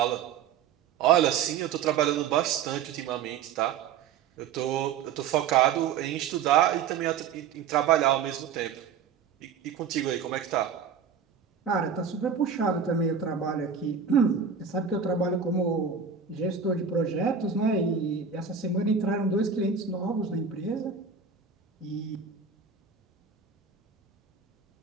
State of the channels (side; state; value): left; quieter; 6.8 dB